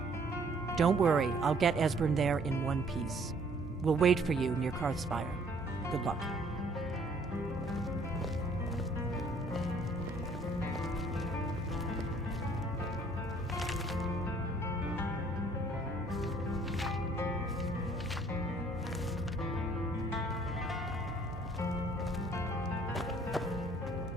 Don't worry, I'll get Esbern there in one piece. We'll wait for you near Karthspire. Good luck.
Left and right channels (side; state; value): right; noise; hum, 14 dB below the sound